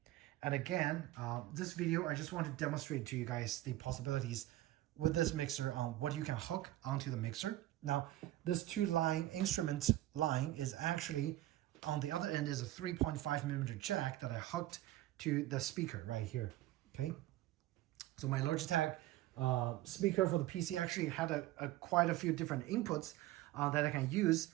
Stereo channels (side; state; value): left; quieter; 15.7 dB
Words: And again, this video, I just want to demonstrate to you guys the possibilities with this mixer on what you can hook onto the mixer. Now, this 2-line instrument line is actually, on the other end is a 3.5mm jack that I hooked to the speaker right here, okay? So my Logitech speaker for the PC actually had quite a few different inputs that I can use.